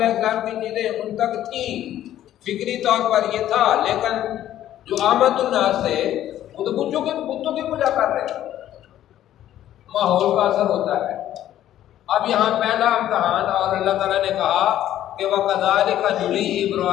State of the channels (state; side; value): quieter; right; 12.3 dB